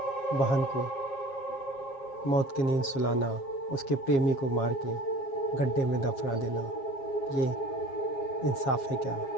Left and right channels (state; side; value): late; right; 7.4 ms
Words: बहन को मौत की नींद सुलाना, उसके प्रेमी को मार के गड्ढे में दफना देना, ये इंसाफ है क्या?